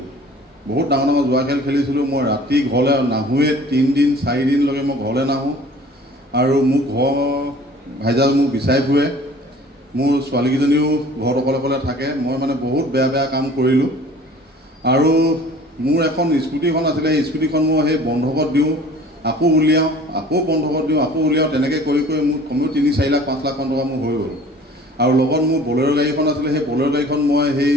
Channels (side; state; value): both; normal; correlation 0.48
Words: মই ৰাতি ঘৰলৈ নাহোঁৱে, 3 দিন 4 দিনলৈকে মই ঘৰলৈ নাহোঁ। আৰু মোৰ ঘৰ ভাইজাল মোক বিচাৰি ফুৰে, মোৰ ছোৱালীকেইজনীও ঘৰত অকলে থাকে। মই মানে বহুত বেয়া কাম কৰিলোঁ। আৰু মোৰ এখন স্কুটিখন আছিলে, সেই স্কুটিখন মই সেই বন্ধকত দিওঁ, আকৌ উলিয়াওঁ, আকৌ বন্ধকত দিওঁ, আকৌ উলিয়াওঁ, তেনেকৈ কৰি মোৰ কমেও 3-4 লাখ 5 লাখ মান টকা মোৰ হৈ গ'ল। আৰু লগত মোৰ বলেৰ' গাড়ীখন আছিলে, সেই বলেৰ' গাড়ীখন মই সেই